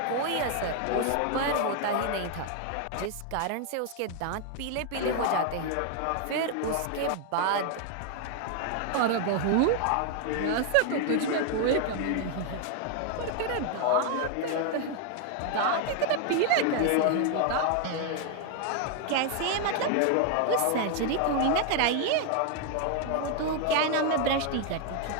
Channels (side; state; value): both; different; correlation 0.00